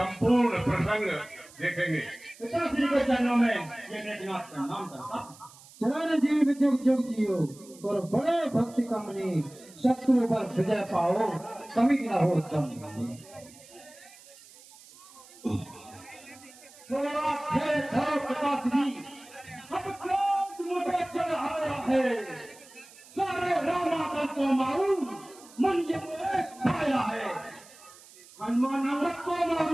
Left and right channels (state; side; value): noise; right; hiss, 22 dB below the sound